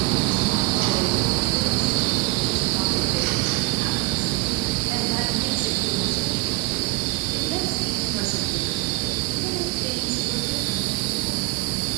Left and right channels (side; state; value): left; quieter; 23.3 dB